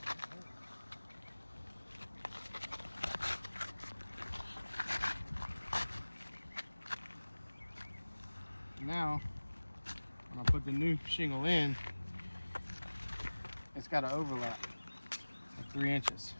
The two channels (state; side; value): inverted; both; correlation -1.00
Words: Now, when I put the new shingle in, it's got an overlap of 3 inches.